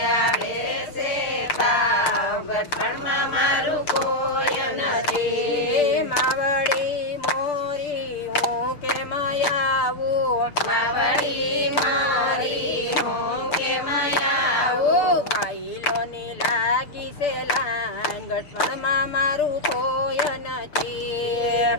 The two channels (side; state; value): right; late; 6.9 ms